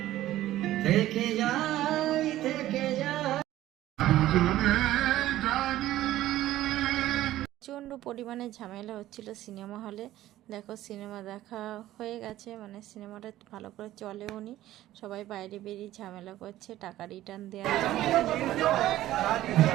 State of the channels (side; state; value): left; quieter; 14.4 dB